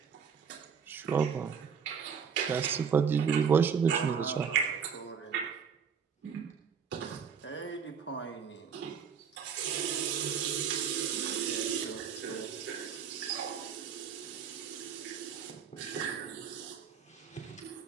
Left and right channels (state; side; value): quieter; left; 6.9 dB